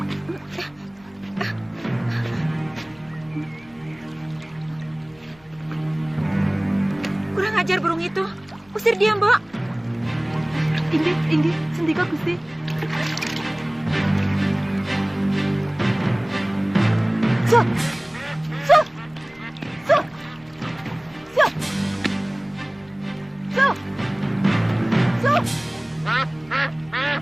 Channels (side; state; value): left; noise; rumble, 29 dB below the sound